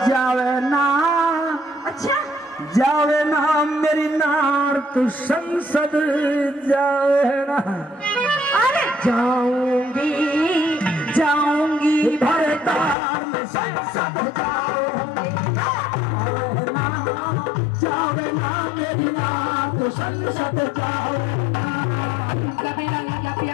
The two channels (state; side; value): drops out; right; at 13.0 s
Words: जावे ना, अच्छा जावे ना मेरी नार तू संसद जावे ना। अरे जाऊंगी जाऊंगी भरतार में संसद जाऊंगी। जावे ना मेरी नार तू संसद जाऊंगी। कबीरा लगा